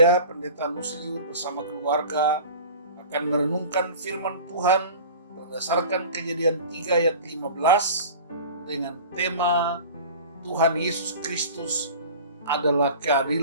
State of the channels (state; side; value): inverted; both; correlation -0.39